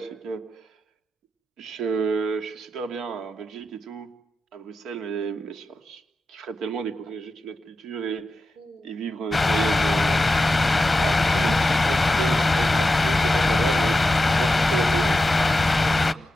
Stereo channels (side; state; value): both; normal; correlation 0.90